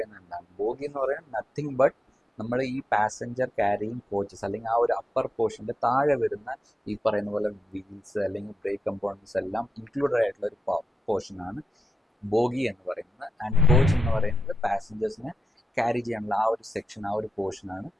എന്താണ്? Bogie എന്ന് പറയുന്നത് nothing but നമ്മൾ ഈ passenger carrying coaches അല്ലെങ്കിൽ ആ ഒരു അപ്പർ പോർഷൻ്റെ താഴെ വരുന്ന ഈ പറയുന്ന പോലെ വീൽസ് അല്ലെങ്കിൽ ബ്രേക്ക് കമ്പോണൻസ് എല്ലാം ഇൻക്ലൂഡഡ് ആയിട്ടുള്ള ഒരു പോർഷനാണ് ബോഗി എന്ന് പറയുന്നത്. ആൻഡ് കോച്ച് എന്ന് പറയുന്നത് പാസഞ്ചേഴ്സിനെ ക്യാരി ചെയ്യാനുള്ള ആ ഒരു സെക്ഷൻ, ആ ഒരു പോർഷനാണ്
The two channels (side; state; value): both; normal; correlation 0.88